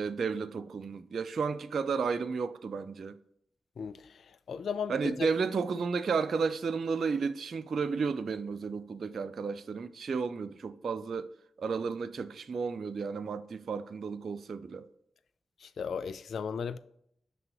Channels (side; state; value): left; quieter; 3.8 dB